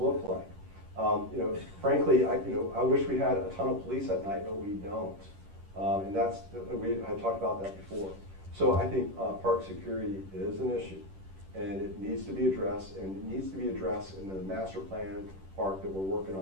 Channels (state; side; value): late; left; 10 ms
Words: like? Frankly, I wish we had a ton of police at night, but we don't. And we had talked about that before. So I think park security is an issue, and it needs to be addressed, and it needs to be addressed in the master plan park that we're working